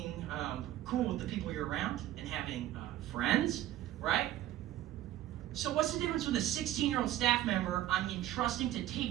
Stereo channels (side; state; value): left; quieter; 13.5 dB